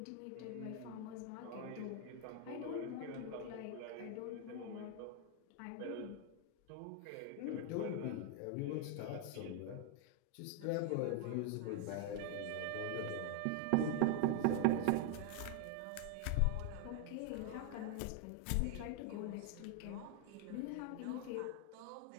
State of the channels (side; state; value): both; different; correlation 0.00